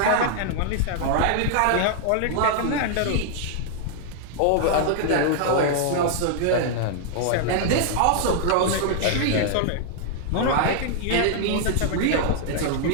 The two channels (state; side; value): different; both; correlation 0.00